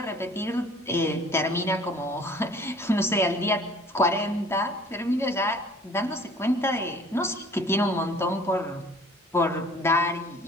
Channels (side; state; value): both; normal; correlation 0.51